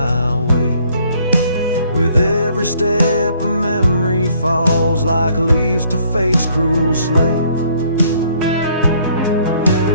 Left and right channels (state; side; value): inverted; both; correlation -0.63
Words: weight. With every step a memory falls like leaves to fate's cruel slate.